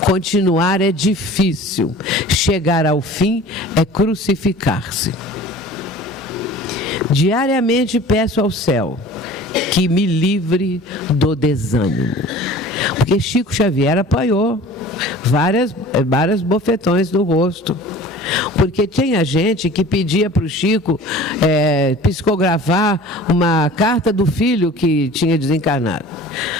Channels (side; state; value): both; normal; correlation 0.43